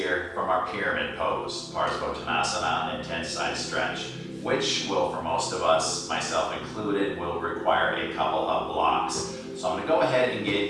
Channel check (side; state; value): both; identical; correlation 1.00